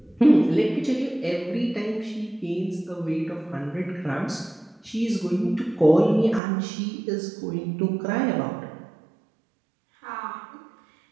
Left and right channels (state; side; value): drops out; left; at 6.4 s